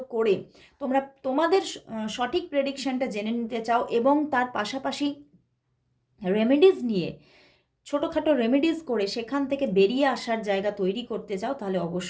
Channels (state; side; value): identical; both; correlation 1.00